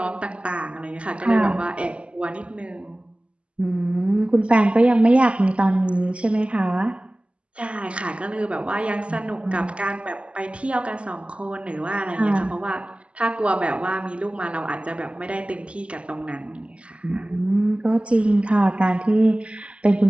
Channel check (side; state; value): left; late; 0.058 ms